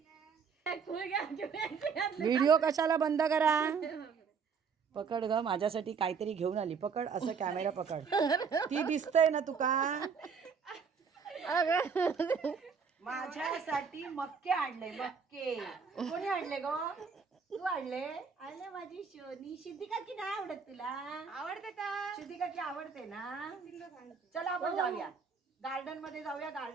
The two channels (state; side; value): quieter; left; 5.9 dB